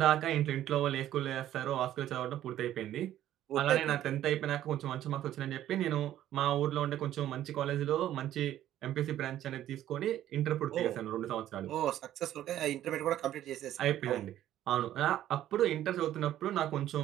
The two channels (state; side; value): quieter; left; 12.4 dB